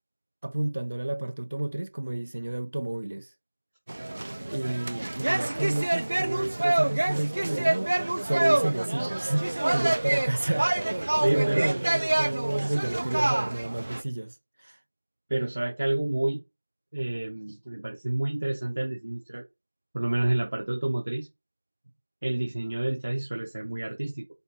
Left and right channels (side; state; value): both; inverted; correlation -1.00